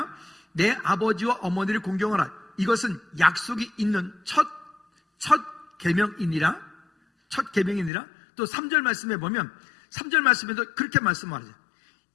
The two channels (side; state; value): right; drops out; at 7.9 s